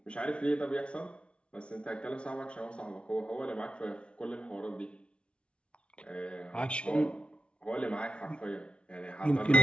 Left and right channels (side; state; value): right; late; 0.059 ms